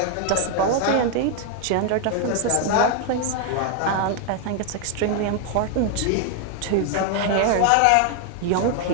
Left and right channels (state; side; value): different; both; correlation 0.00